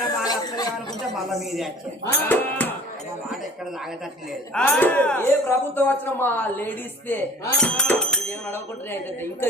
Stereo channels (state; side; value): normal; both; correlation 0.46